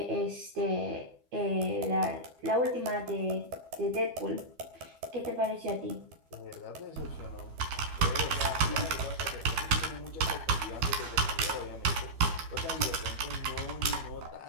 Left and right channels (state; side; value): late; left; 12 ms